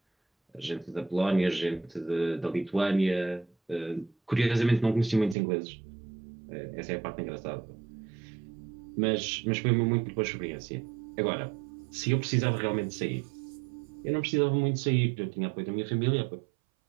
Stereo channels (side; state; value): left; drops out; at 5.4 s